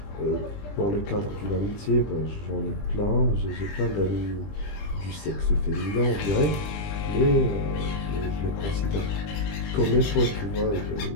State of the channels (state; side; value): late; right; 20 ms